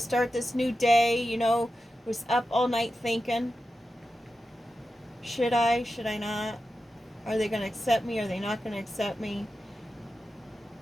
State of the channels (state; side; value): normal; both; correlation 0.91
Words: start this new day, you know, was up all night thinking, should I not? Are they going to accept me? Are they not going to accept me?